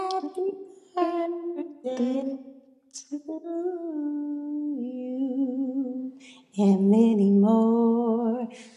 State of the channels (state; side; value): identical; both; correlation 1.00